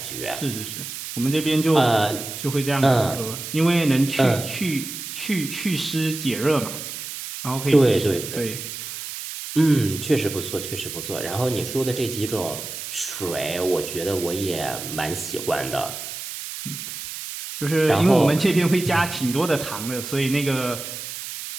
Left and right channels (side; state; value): right; noise; hiss, 8 dB below the sound